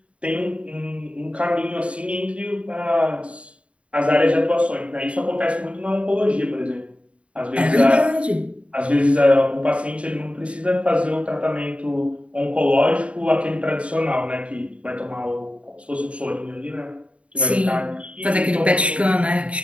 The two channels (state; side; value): late; left; 0.061 ms